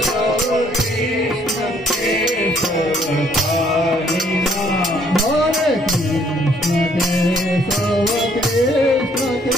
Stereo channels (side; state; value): both; normal; correlation 0.64